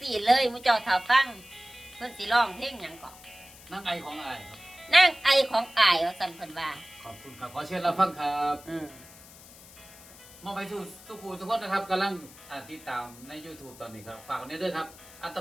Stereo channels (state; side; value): noise; left; hiss, 20 dB below the sound